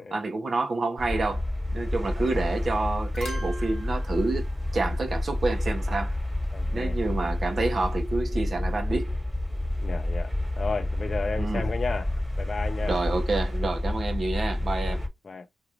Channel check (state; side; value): normal; both; correlation 0.94